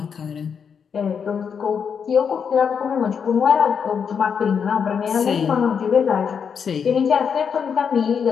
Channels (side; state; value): right; quieter; 6.8 dB